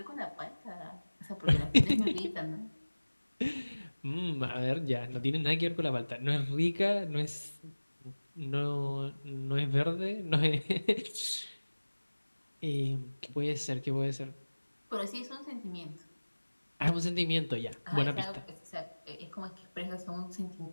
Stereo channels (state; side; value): inverted; both; correlation -1.00